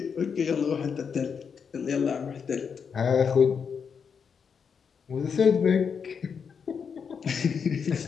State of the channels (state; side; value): quieter; right; 6.4 dB